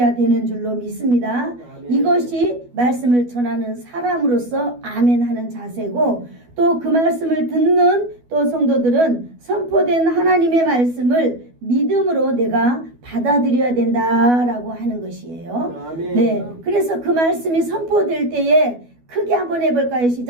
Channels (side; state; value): left; late; 12 ms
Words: 되는 줄로 믿습니다. 아멘. 이것이 말씀을 전하는 사람으로서 아멘 하는 자세고, 또 그 말씀을 듣는 또 성도들은 선포된 하나님의 말씀을 믿음으로 내가 받아들여야 된다라고 하는 것이에요. 아멘. 네, 그래서 그 말씀이 선포될 때에 크게 한번 해볼까요?